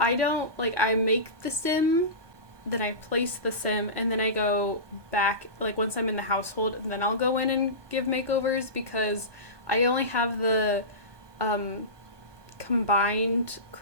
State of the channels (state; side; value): late; left; 1.2 ms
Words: make the sim, then I place the sim, and then I go back, like once I'm in the household, and then I'll go in and give makeovers, because I only have the combined